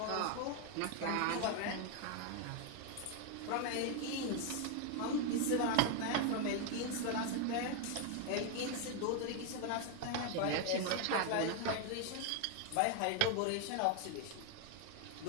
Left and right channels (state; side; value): different; both; correlation 0.01